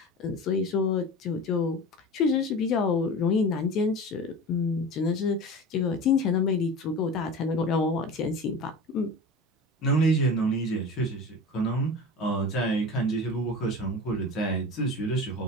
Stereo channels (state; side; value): normal; both; correlation 0.33